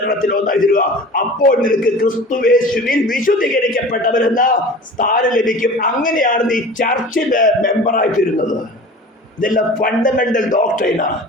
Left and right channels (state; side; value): normal; both; correlation 0.39